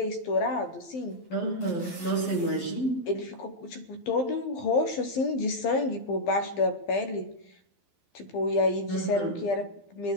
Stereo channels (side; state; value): right; late; 12 ms